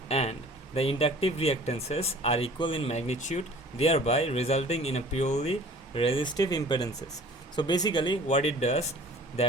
and the inductive reactances are equal in magnitude, thereby resulting in a purely resistive impedances. So basically what it does,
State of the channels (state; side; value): normal; both; correlation 0.48